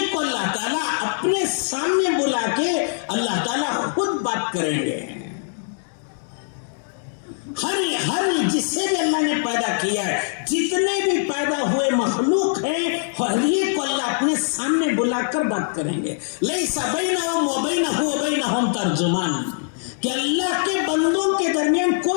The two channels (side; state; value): right; silent; digital silence